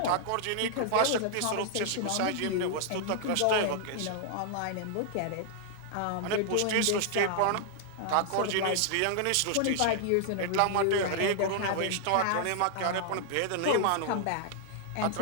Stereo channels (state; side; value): different; both; correlation -0.01